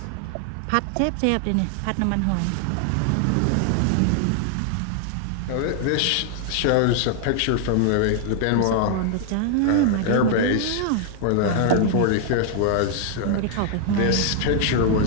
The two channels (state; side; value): different; both; correlation 0.00